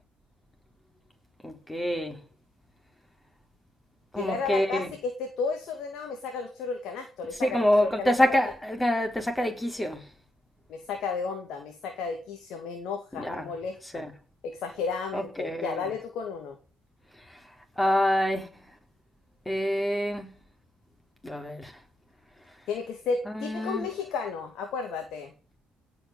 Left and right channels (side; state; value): both; normal; correlation 0.82